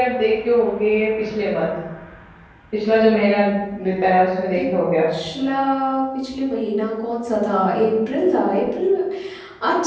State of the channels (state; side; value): identical; both; correlation 1.00